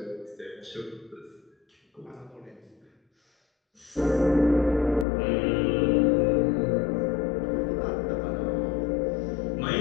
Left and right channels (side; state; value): right; drops out; at 5.1 s